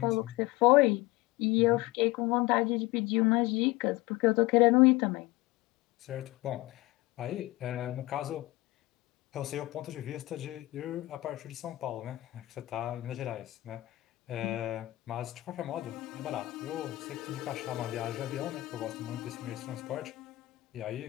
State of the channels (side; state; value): right; quieter; 19.1 dB